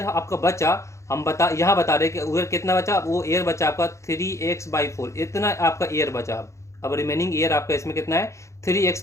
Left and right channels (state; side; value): late; right; 0.14 ms